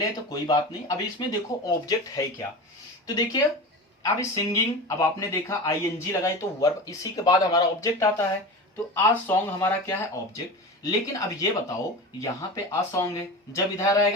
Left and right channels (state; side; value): normal; both; correlation 0.29